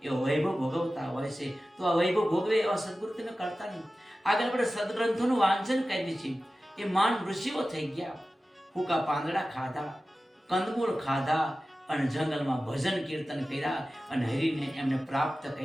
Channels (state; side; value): normal; both; correlation 0.95